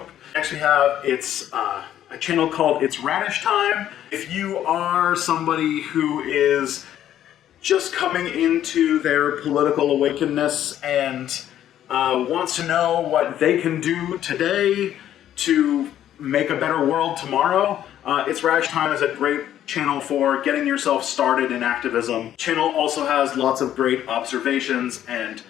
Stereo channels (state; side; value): quieter; right; 11.3 dB